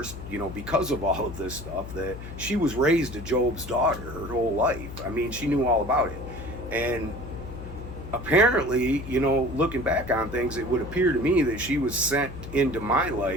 because of all of this stuff, that she was raised a Job's daughter her whole life. I mean, she knew all about it. And apparently, looking back on things, it would appear to me that she was sent into my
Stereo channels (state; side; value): noise; left; hum, 11 dB below the sound